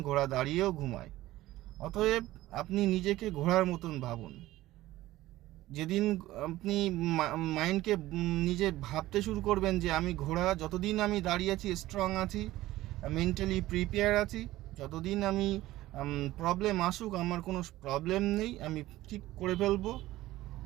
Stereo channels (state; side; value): quieter; left; 16.3 dB